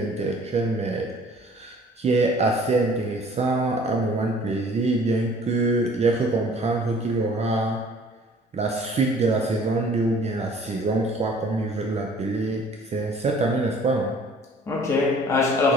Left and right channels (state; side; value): normal; both; correlation 0.53